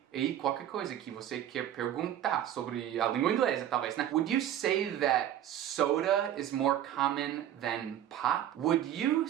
e qualquer coisa que você quer perguntar sobre a língua inglesa, talvez, né? Would you say that soda is more common than pop? Would you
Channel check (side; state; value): left; quieter; 11.2 dB